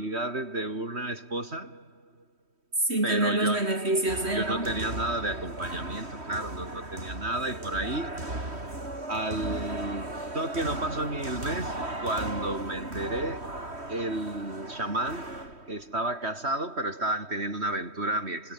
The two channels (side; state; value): left; late; 3.1 ms